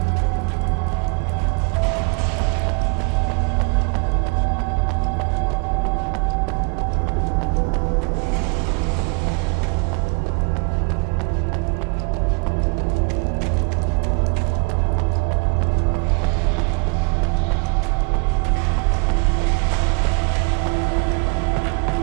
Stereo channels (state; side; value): quieter; left; 34.2 dB